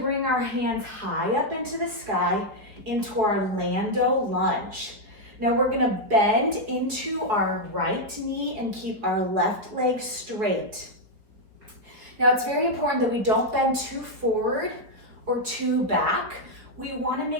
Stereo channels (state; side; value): late; left; 5.0 ms